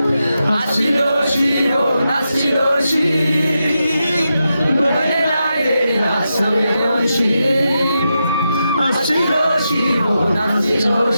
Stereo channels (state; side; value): inverted; both; correlation -0.87